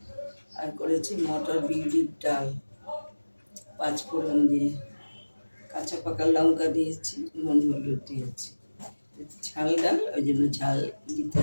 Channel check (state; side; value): inverted; both; correlation -1.00